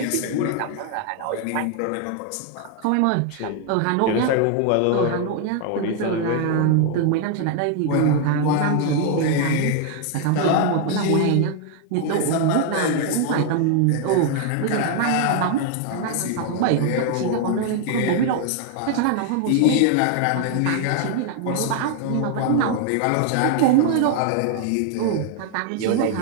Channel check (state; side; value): different; both; correlation 0.00